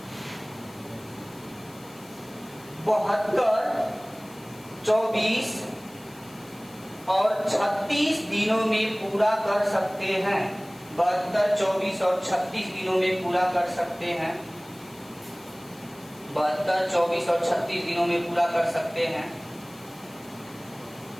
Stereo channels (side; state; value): left; noise; hiss, 23 dB below the sound